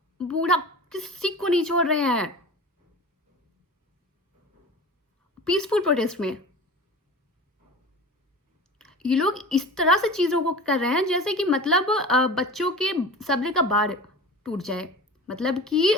बूढ़ा किसी को नहीं छोड़ रहे हैं पीसफुल प्रोटेस्ट में। ये लोग इस तरह से चीजों को कर रहे हैं जैसे कि मतलब बच्चों के सब्र का बाड़ टूट जाए। मतलब कि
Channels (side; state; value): both; normal; correlation 0.36